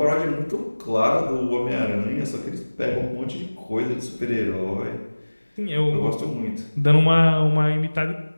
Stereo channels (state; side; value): inverted; both; correlation -1.00